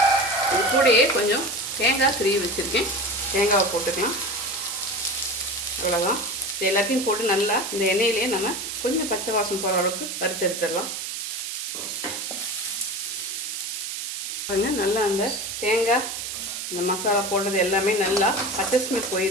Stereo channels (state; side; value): noise; right; hiss, 5 dB below the sound